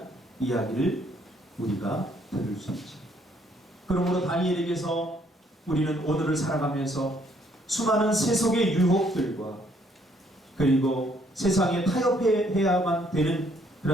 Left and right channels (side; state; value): both; normal; correlation 0.67